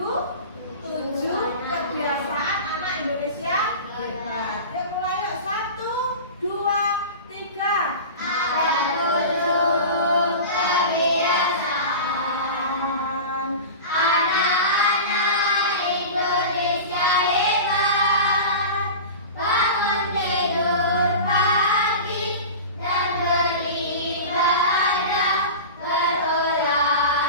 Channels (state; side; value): inverted; both; correlation -0.32